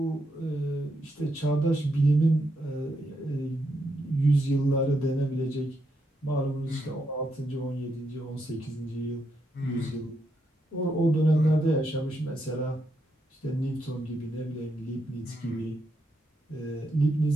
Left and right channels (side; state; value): both; normal; correlation 0.80